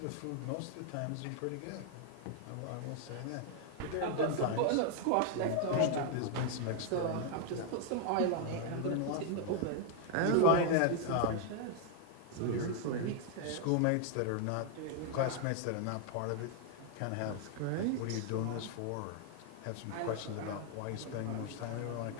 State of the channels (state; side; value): different; both; correlation 0.00